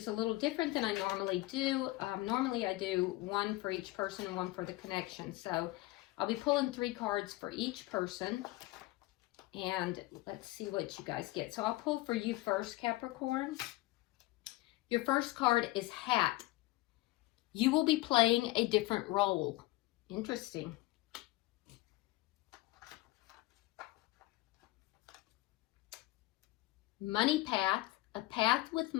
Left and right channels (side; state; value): right; quieter; 19.4 dB